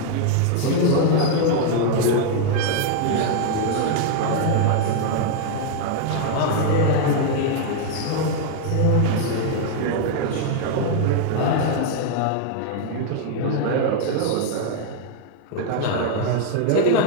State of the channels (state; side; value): different; both; correlation 0.00